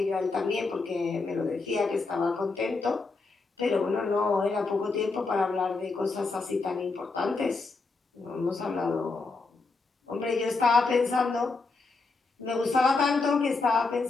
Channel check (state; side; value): quieter; right; 4.0 dB